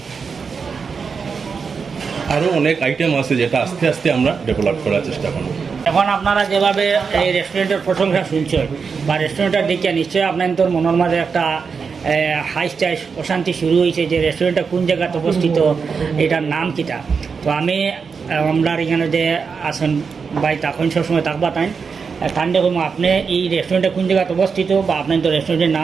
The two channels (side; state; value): left; quieter; 5.5 dB